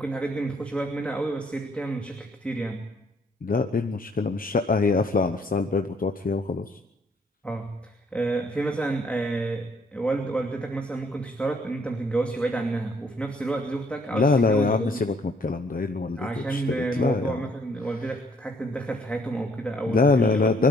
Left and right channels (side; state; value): both; normal; correlation 0.65